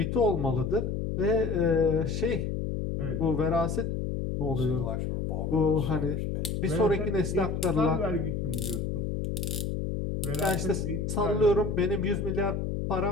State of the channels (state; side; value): noise; left; hum, 2 dB below the sound